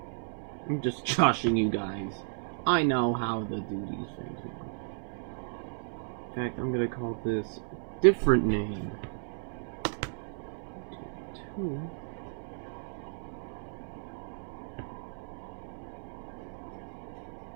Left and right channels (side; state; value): left; silent; 55 dB below the other